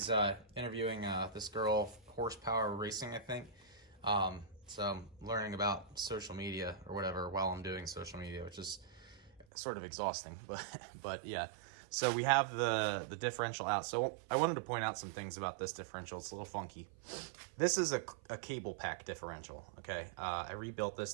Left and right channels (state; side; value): drops out; left; at 9.5 s